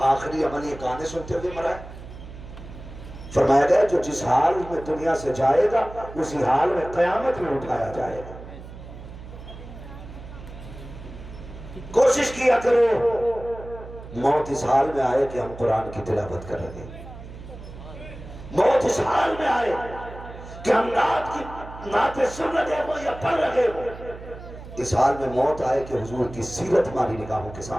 آخری عمل یہ گانے سنتے ہوئے مرا ہے۔ فرمایا گیا جو جس حال میں دنیا سے جائے گا اسی حال میں قیامت میں اٹھایا جائے گا۔ کوشش کیا کرو موت اس حال میں آئے کہ ہم قرآن کی تلاوت کر رہے ہیں، موت اس حال میں آئے کہ ہم نعتیں سن رہے ہو یا پڑھ رہے ہو، اس حال میں موت آئے کہ حضور کی سیرت ہماری نگاہوں کے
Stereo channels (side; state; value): right; noise; hum, 14 dB below the sound